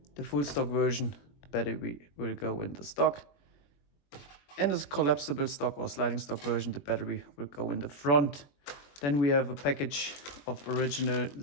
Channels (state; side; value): late; right; 21 ms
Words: The full stock version, the battery will go in the stock. In this collapsible stock or sliding stock version, the battery will go in the front. Then we have a package of original